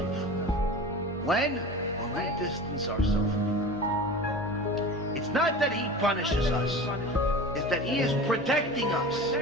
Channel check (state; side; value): normal; both; correlation 0.34